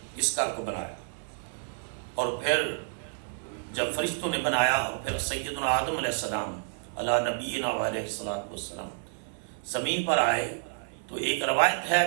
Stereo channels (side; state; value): left; silent; 57 dB below the other